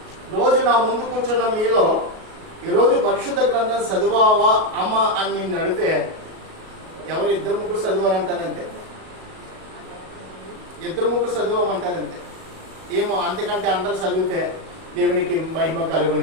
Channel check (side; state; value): left; late; 37 ms